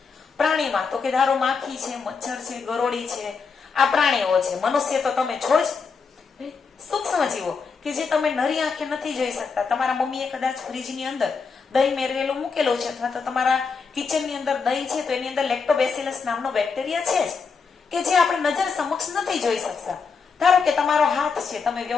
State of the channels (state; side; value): quieter; right; 5.3 dB